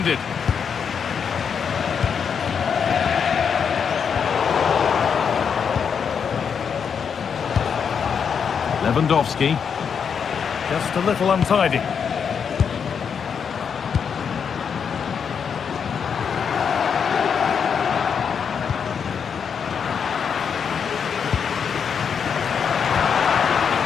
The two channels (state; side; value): quieter; right; 6.9 dB